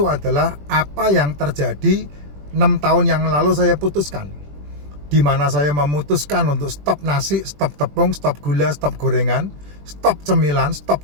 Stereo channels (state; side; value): late; left; 20 ms